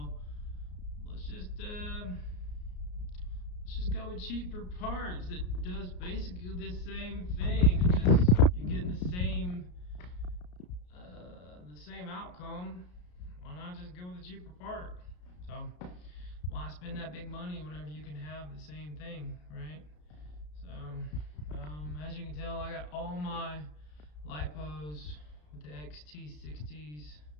let's just go with cheaper parts that does basically the same thing. Just you're getting the same outcome. Why not just go with a cheaper part? So why spend that big money whenever you can have the same thing, right? So as you can tell, I got all my lipos with the XT60s.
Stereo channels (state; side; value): late; right; 33 ms